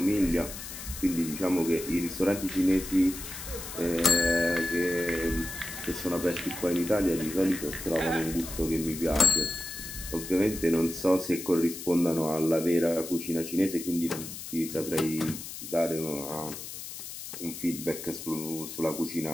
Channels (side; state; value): left; noise; hiss, 10 dB below the sound